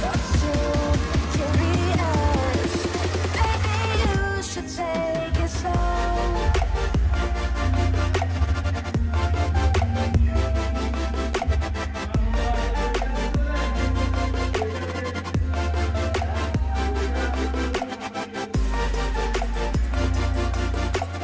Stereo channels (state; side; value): identical; both; correlation 1.00